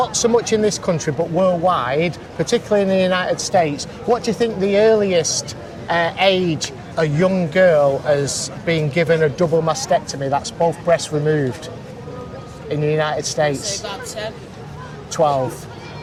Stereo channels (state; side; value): identical; both; correlation 1.00